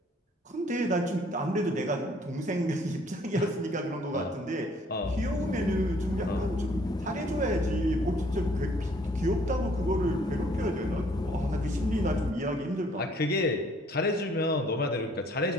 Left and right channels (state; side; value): normal; both; correlation 0.61